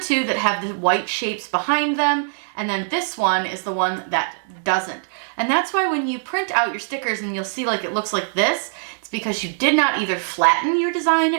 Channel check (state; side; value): silent; left; digital silence